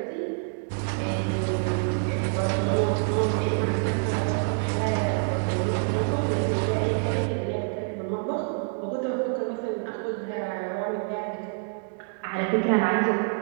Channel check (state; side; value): silent; left; digital silence